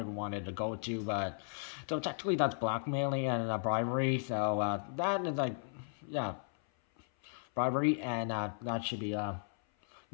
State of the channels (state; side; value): silent; right; 54 dB below the other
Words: wanted to go to. But so technically that's blackmailing and bribery. So that is bribery, and that should be